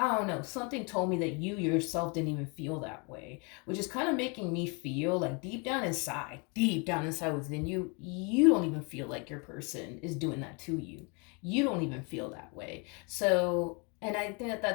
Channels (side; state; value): right; quieter; 32.5 dB